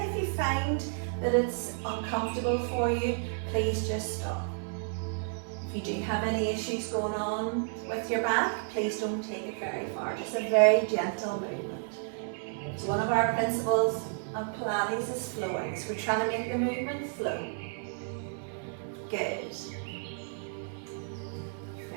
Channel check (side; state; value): left; silent; 57 dB below the other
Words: if you find that it's uncomfortable for you, please just stop. If you do have any issues going on with your back, please don't take it very far. Just a very gentle movement. So one of our principles of Pilates is flowing. So we're trying to make the movement flow. Good.